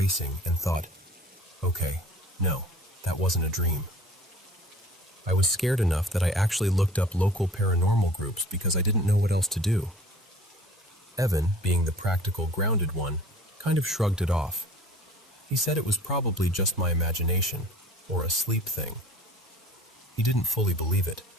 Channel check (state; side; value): normal; both; correlation 0.47